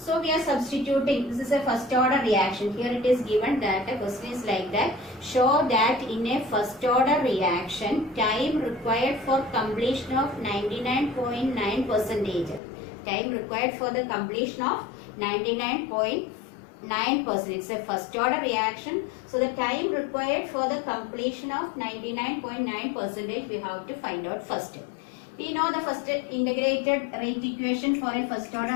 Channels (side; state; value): right; drops out; at 12.6 s